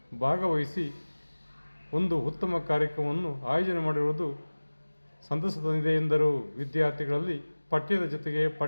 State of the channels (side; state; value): both; inverted; correlation -1.00